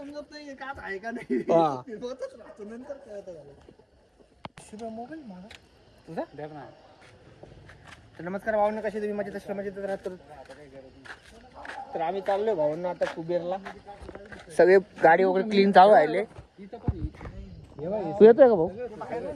नाही का आहे का नाही. हा. होतच राहतो नंतर कळत झालं. शिवा मोबाईल मागा तुझा. द्या ना. तर नमस्कार भावना, कसे तुम्ही मजेत असला मजेत राहतो. तर आम्ही चाललोय भावना आता कुबेरला. सगळे गाडी वगैरे क्लीन चालू राहिले. इथं पण तू येतोय का भाऊ.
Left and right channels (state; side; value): identical; both; correlation 1.00